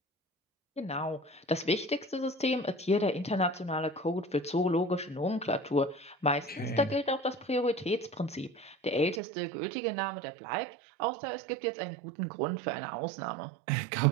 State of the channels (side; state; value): left; drops out; at 9.2 s